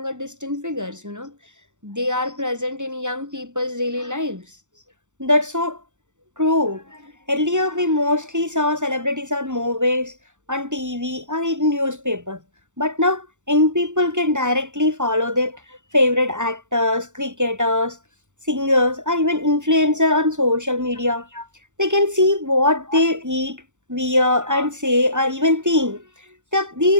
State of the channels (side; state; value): left; late; 0.85 ms